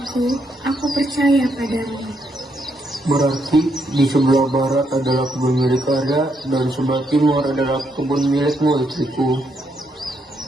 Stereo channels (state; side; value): normal; both; correlation 0.77